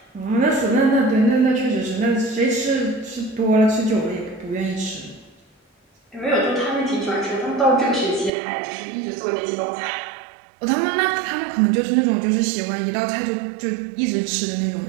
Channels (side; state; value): left; drops out; at 8.3 s